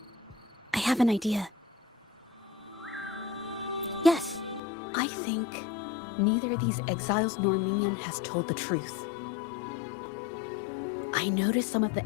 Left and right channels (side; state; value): right; drops out; at 4.6 s